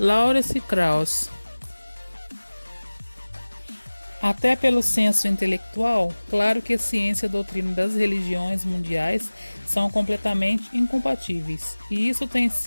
Krauss. Até pelo senso intelectual, claro que a ciência e a doutrina das religiões mundiais são completamente incompatíveis, e isso tem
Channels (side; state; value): both; inverted; correlation -1.00